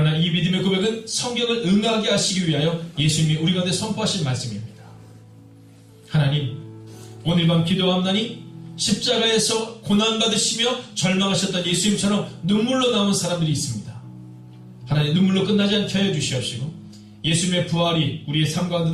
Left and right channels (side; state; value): both; identical; correlation 1.00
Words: 이 믿음의 고백은 성경을 응하게 하시기 위하여 예수님이 우리 가운데 선포하신 말씀입니다. 하나님, 오늘 밤 기도함나니 십자가에서 고난받으시며 절망하셨던 예수님처럼 눈물로 나온 사람들이 있습니다. 하나님, 눈물로 끝나지 않게 하여 주시옵시고 예수님의 부활이 우리의 삶